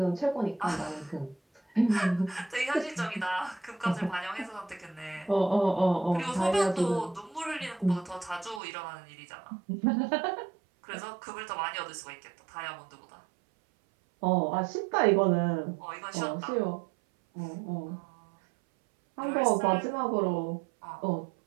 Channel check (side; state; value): left; drops out; at 8.6 s